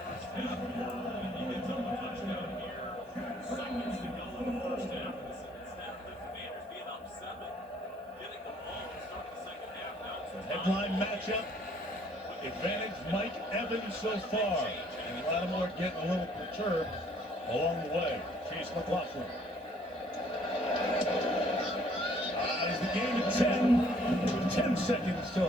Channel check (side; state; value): both; normal; correlation 0.61